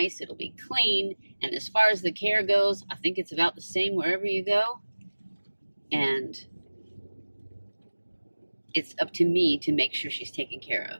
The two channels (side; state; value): both; inverted; correlation -1.00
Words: it'll be clean, and as far as the care goes, I think it's about the same wherever you go. And it's up to me to make sure she's taken care